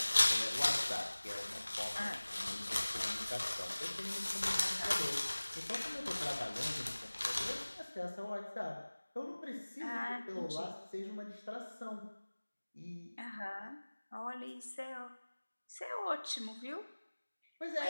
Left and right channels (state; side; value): inverted; both; correlation -1.00